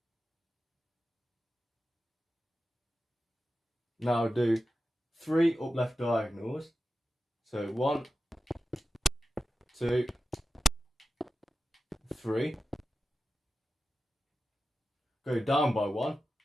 Now do 3 up left diagonals. So 1, 2, 3. Go down by 1.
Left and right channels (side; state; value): both; normal; correlation 0.92